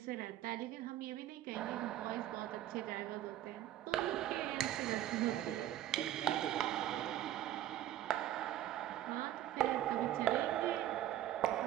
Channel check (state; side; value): quieter; left; 12.9 dB